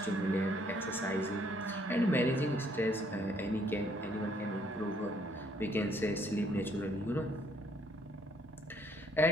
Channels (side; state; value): both; normal; correlation 0.66